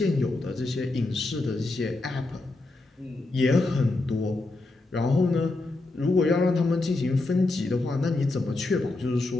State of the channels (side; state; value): right; quieter; 3.1 dB